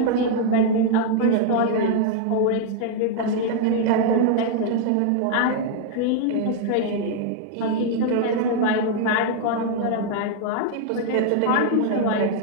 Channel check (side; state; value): both; different; correlation -0.01